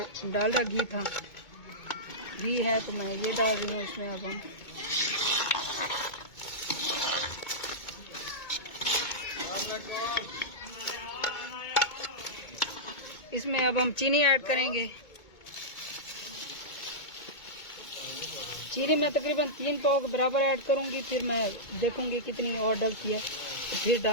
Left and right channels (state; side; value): late; right; 2.2 ms